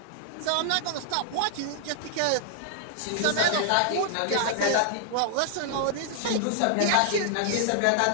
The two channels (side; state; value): both; different; correlation -0.01